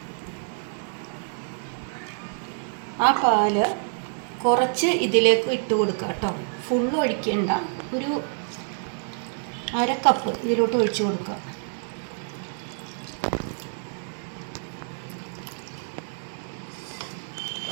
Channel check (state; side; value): silent; left; 60 dB below the other